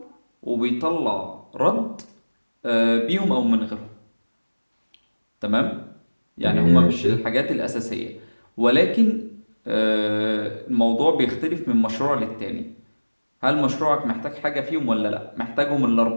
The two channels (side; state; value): both; inverted; correlation -1.00